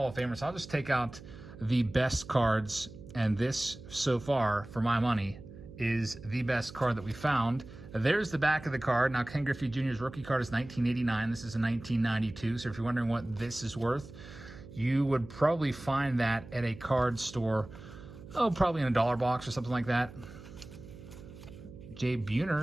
of Famers, so I'll just take out the best cards. And this, so far, for my money, is the best card that we found. There's the back of the card. Now, Ken Griffey Jr.'s rookie card is 1989. This is a 1992. So if you're wondering what this is worth, you would probably find that at a card store, probably in a dollar box or something like that. Jay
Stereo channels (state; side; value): noise; right; hum, 16 dB below the sound